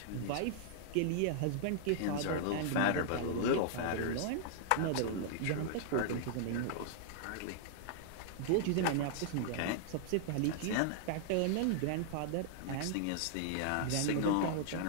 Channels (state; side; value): different; both; correlation -0.01